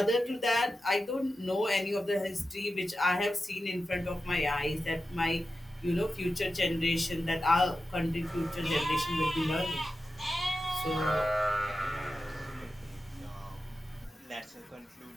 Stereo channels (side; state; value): both; normal; correlation 0.92